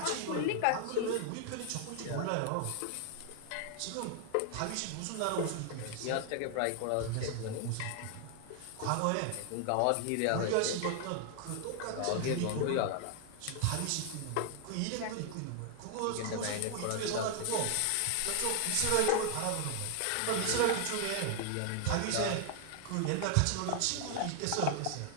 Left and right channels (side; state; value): both; different; correlation 0.00